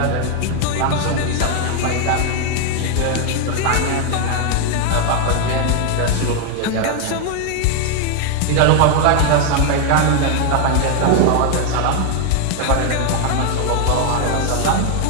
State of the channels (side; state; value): both; different; correlation 0.00